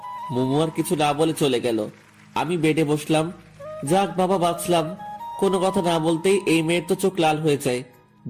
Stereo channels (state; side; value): identical; both; correlation 1.00